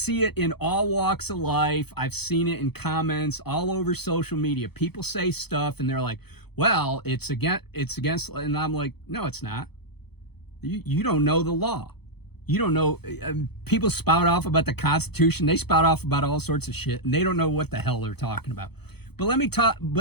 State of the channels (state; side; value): late; right; 0.98 ms